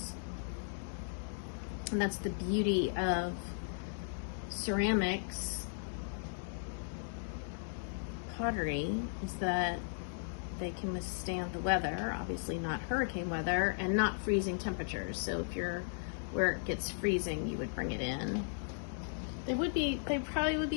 And that's the beauty of ceramics pottery, is that they can withstand the weather, obviously not hurricane weather, and not freezing temperatures. So if you're where it gets freezing, you would bring it in. They probably would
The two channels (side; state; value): right; silent; digital silence